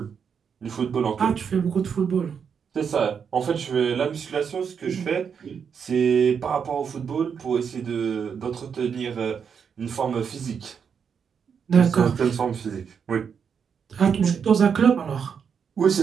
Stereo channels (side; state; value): left; quieter; 6.9 dB